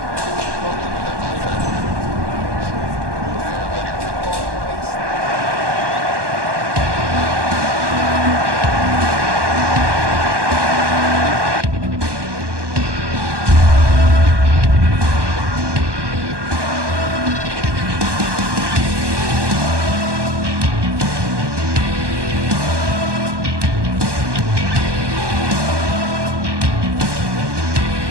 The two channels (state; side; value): late; left; 1.2 ms